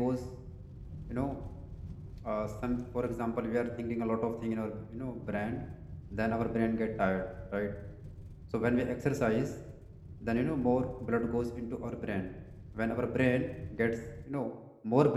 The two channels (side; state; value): both; identical; correlation 1.00